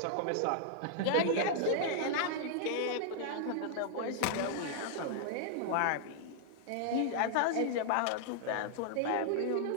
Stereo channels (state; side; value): different; both; correlation -0.01